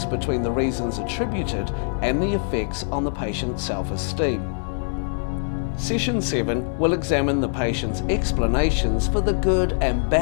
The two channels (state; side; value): silent; right; 63 dB below the other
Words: between the reasons attributed and the effects on the patient's self-esteem. Session 7 will examine the patient's explanations for the good and